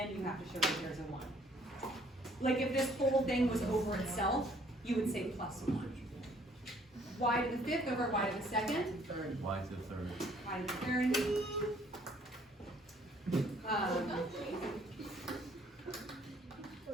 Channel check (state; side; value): normal; both; correlation 0.61